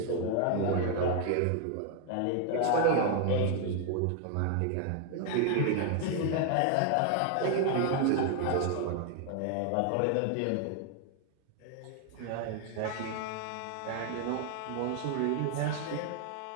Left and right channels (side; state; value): both; different; correlation 0.00